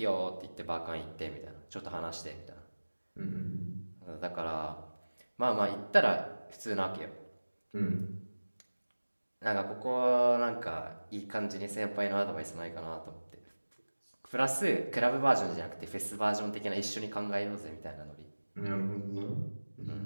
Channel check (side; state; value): both; inverted; correlation -1.00